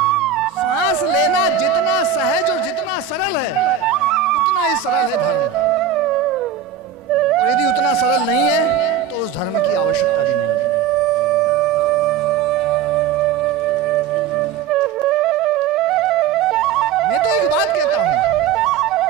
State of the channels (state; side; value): quieter; left; 8.0 dB